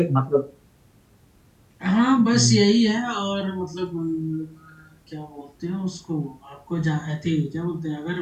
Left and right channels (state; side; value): identical; both; correlation 1.00